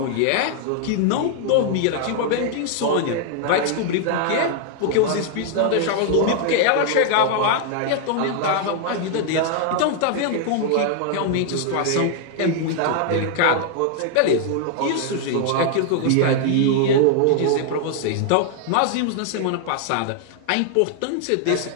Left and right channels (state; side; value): different; both; correlation 0.00